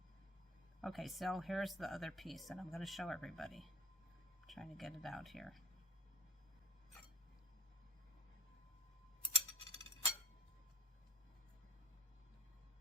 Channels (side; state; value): both; normal; correlation 0.43